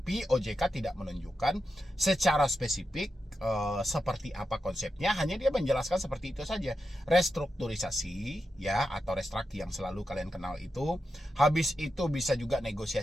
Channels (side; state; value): both; normal; correlation 0.88